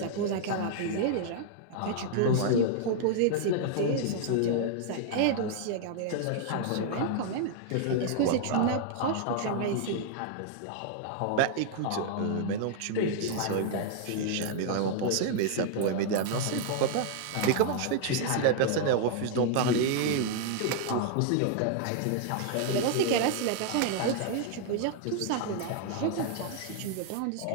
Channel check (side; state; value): both; different; correlation -0.01